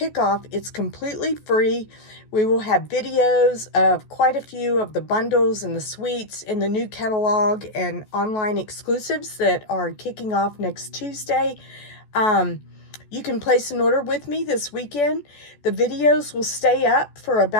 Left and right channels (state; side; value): late; right; 14 ms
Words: it's completely free. We will have videos of quite a few of the bundles and the suites in the new catalog and online exclusives that are kicking off next Tuesday. You can place an order with me this weekend. The videos will stay up for